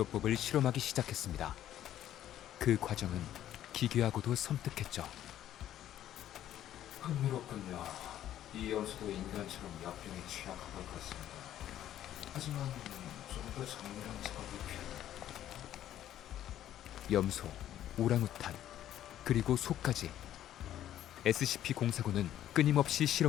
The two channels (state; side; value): quieter; right; 11.9 dB